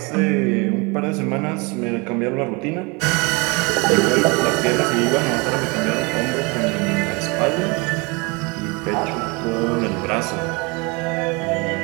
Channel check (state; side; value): quieter; left; 28.5 dB